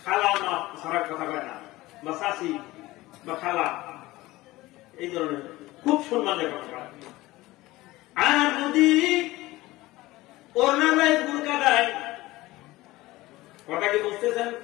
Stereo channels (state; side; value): quieter; right; 18.7 dB